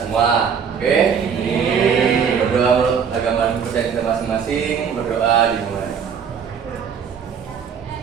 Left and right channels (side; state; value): left; quieter; 7.0 dB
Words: Oke? Berdoa menurut agama dan kepercayaan kita masing-masing. Berdoa dimulai.